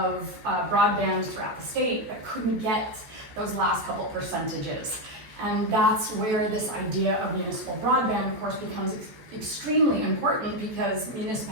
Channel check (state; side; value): late; left; 14 ms